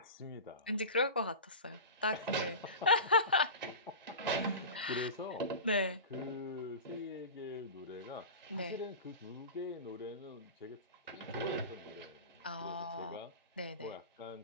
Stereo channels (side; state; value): both; inverted; correlation -0.30